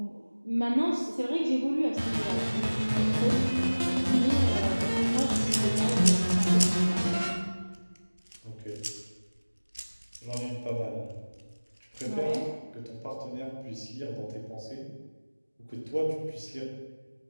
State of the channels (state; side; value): inverted; both; correlation -1.00